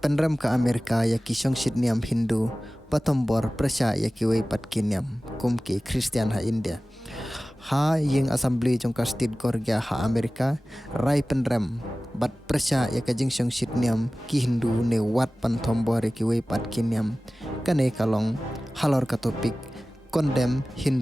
Penrem ke Amerika ya ki songsit niam Hindu patombor prasya ya ki wei pat kiniam kum ki Christian ha India. Ha ying assembly jong ka state gorgia ha Amerika rai penrem bat prasya ya ka jing songsit niam ki Hindu ne wat pantombor ya ki wei pat kiniam kane kalong halor ka topik condemn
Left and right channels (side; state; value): both; normal; correlation 0.97